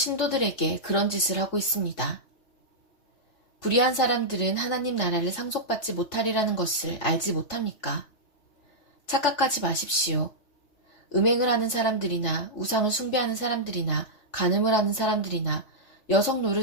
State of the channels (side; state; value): right; late; 3.4 ms